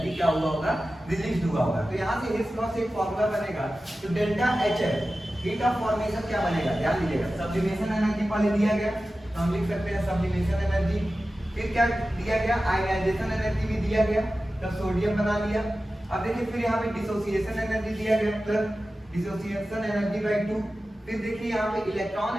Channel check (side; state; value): both; normal; correlation 0.94